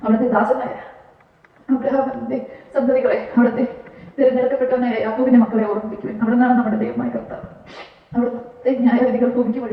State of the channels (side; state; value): both; identical; correlation 1.00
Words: അവിടുത്തെ ദാസനായ അബ്രഹാമിന്റെ സന്തതികളെ, അവിടുത്തെ തിരഞ്ഞെടുക്കപ്പെട്ടവനായ യാക്കോബിന്റെ മക്കളെ ഓർമ്മിപ്പിക്കുവിൻ. അവിടുന്നാണ് നമ്മുടെ ദൈവമായ കർത്താവ്. അവിടുത്തെ ന്യായവിധികൾ ഭൂമിക്ക്